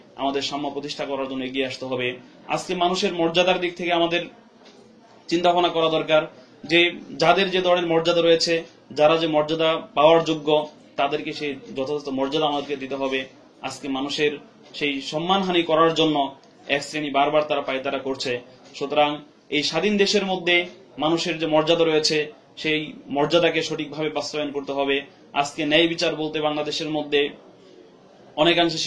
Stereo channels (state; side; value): identical; both; correlation 1.00